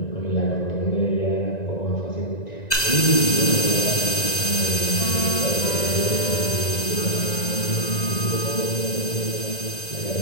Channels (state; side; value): late; right; 1.9 ms